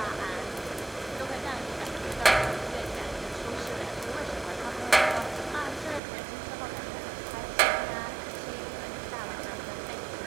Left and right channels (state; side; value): drops out; left; at 6.0 s